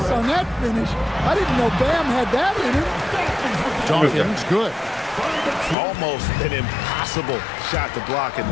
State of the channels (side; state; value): right; drops out; at 5.8 s